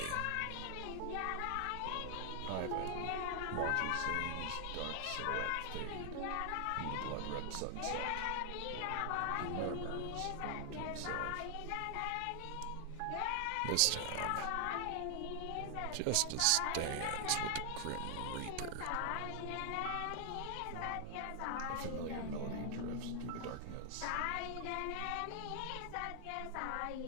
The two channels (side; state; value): both; different; correlation 0.00